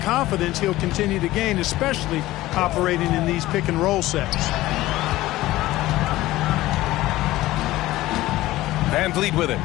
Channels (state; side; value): quieter; right; 16.8 dB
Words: he'll continue to gain, especially operating in these pick and roll sets. Van Vliet with it.